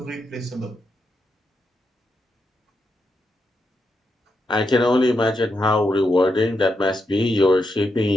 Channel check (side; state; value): both; normal; correlation 0.84